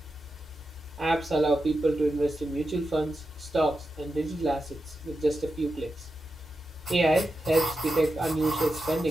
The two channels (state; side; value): normal; both; correlation 0.89